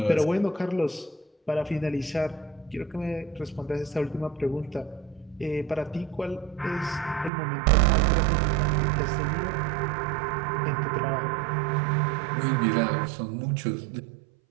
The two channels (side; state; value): left; drops out; at 7.3 s